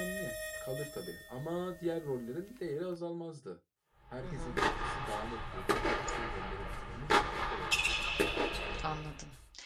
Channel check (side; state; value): both; identical; correlation 1.00